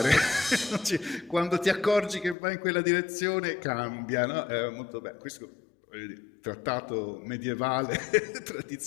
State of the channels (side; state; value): right; drops out; at 2.4 s